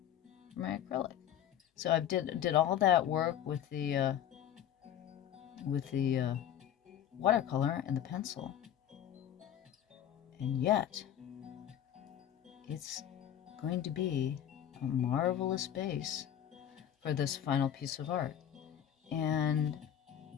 for my acrylic. So I did all that work with the watercolor and the pencil, and yet it's going to be a marvelous base for this final piece of art. And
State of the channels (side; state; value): right; quieter; 10.4 dB